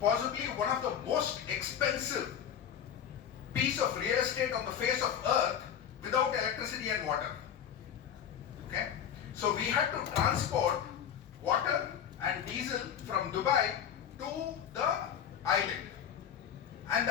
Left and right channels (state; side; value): quieter; right; 8.9 dB